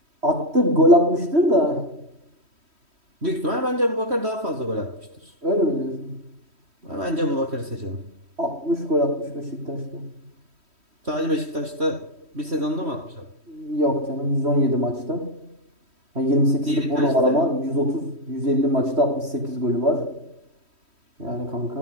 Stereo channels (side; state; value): left; late; 3.1 ms